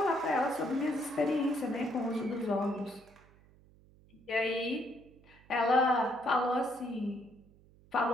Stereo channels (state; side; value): noise; right; hum, 27 dB below the sound